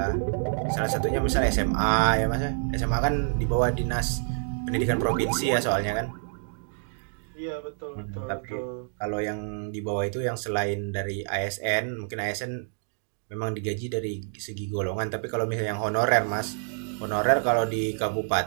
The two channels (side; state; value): left; silent; digital silence